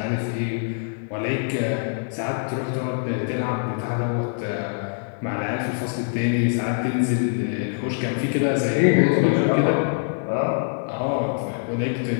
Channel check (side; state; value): right; silent; 63 dB below the other